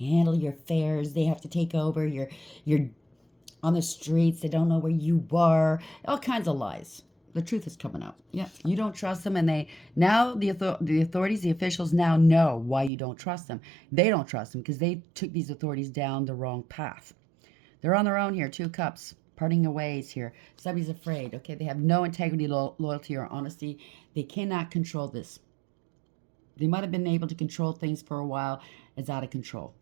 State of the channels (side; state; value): left; drops out; at 12.9 s